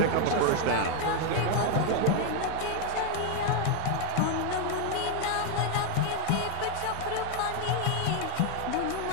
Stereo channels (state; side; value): different; both; correlation 0.01